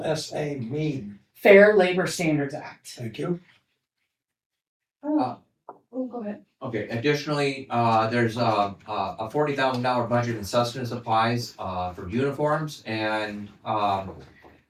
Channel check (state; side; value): identical; both; correlation 1.00